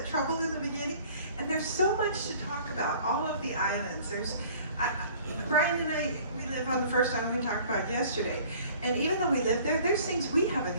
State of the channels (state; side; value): inverted; both; correlation -0.51